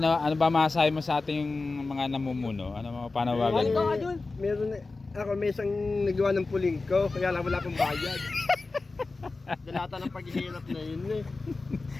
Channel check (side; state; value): right; quieter; 3.6 dB